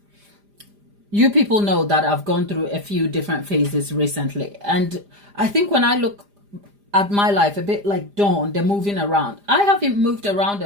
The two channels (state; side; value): late; left; 4.9 ms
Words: you people know that I've gone through a few different phases recently. And I think when I look at my life, a bit like Dawn, the moving around, I haven't moved around